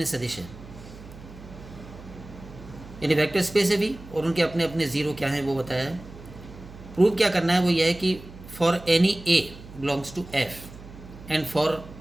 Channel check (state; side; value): noise; right; hum, 17 dB below the sound